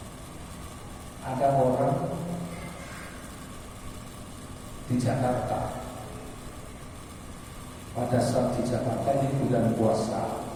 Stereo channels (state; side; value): identical; both; correlation 1.00